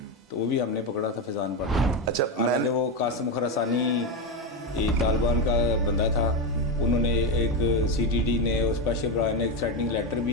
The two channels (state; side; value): normal; both; correlation 0.12